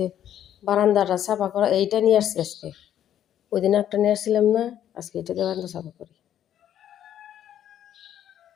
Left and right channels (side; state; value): right; quieter; 10.7 dB